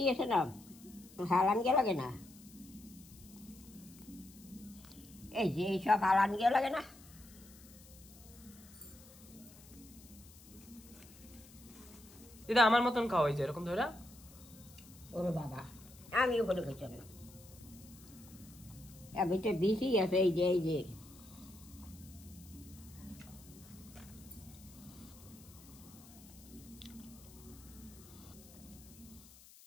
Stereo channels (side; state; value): left; noise; hiss, 21 dB below the sound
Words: আছে না, হালান গে লাগে না? এই যে এইসব হালান গে লাগে না? দিদা আমার মতন খাও, এই যে এরকম ধরা। ওরে বাবা আমি ওখানে খেয়েছি না, এবার তো বেশি আছে, এই যে